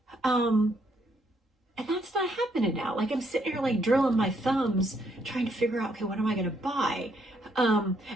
And that's not happening now. Like I'm sitting here like drilling my thumbs trying to figure out, okay, what am I going to buy? And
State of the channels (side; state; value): both; normal; correlation 0.72